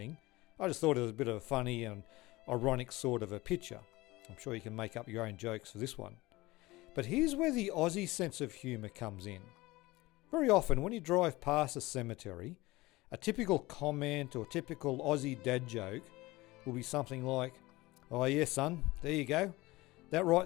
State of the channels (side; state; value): right; quieter; 20.4 dB